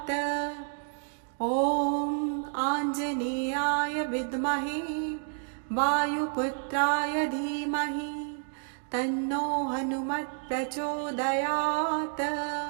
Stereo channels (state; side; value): silent; left; 58 dB below the other